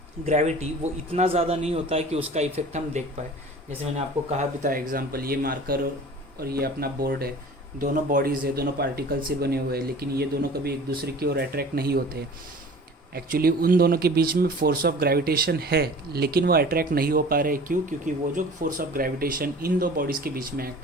ग्रेविटी, वो इतना ज़्यादा नहीं होता है कि उसका इफेक्ट हम देख पाए. जैसे मैंने आपको कहा भी था एग्जाम्पल, ये मार्कर और ये अपना बोर्ड है, दोनों बॉडीज़ है, दोनों पार्टिकल से बने हुए हैं, लेकिन ये दोनों कभी एक दूसरे की ओर अट्रैक्ट नहीं होते. एक्चुअली उन दोनों के बीच में फोर्स ऑफ ग्रेविटेशन है, लेकिन वो अट्रैक्ट नहीं हो पा रहे. क्यों? क्योंकि वो जो फोर्स ऑफ ग्रेविटेशन इन दो बॉडीज़ के बीच में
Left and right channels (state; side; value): normal; both; correlation 0.43